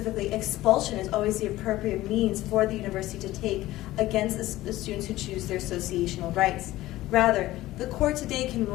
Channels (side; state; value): right; quieter; 16.4 dB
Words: expulsion is always the appropriate means for the university to take against the students who choose their associational rights. Rather, the court today can